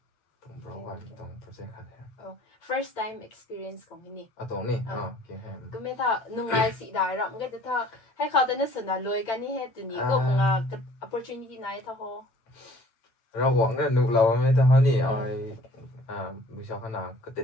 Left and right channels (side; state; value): right; late; 8.9 ms